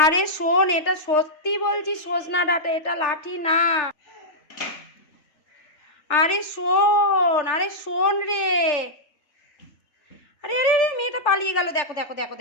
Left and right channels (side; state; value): right; late; 3.4 ms